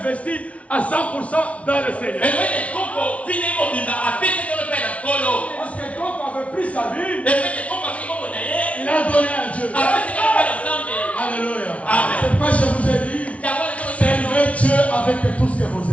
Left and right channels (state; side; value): late; right; 0.064 ms